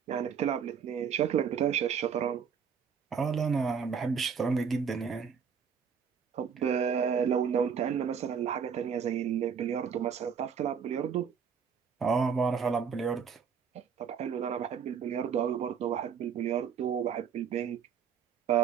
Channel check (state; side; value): quieter; left; 7.0 dB